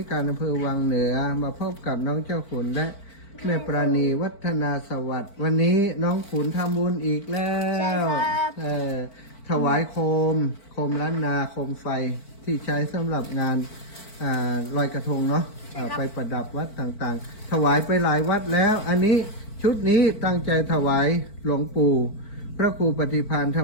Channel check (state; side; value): late; right; 4.5 ms